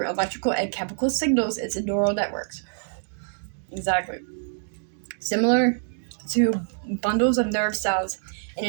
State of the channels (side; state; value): left; silent; digital silence